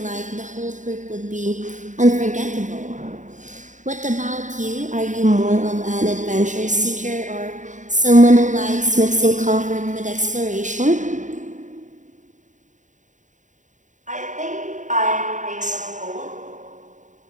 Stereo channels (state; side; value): late; left; 0.36 ms